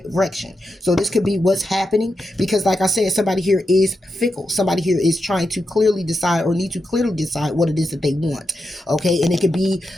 So this could be what's happening, because like I said, somebody here is fickle. Somebody here is trying to clearly decide or need to clearly decide what it is that they want. Okay, and it could be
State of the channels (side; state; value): both; normal; correlation 0.87